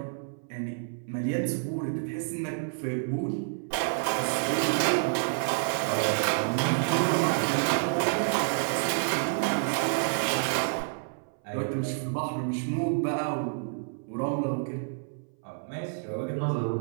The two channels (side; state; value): left; silent; 58 dB below the other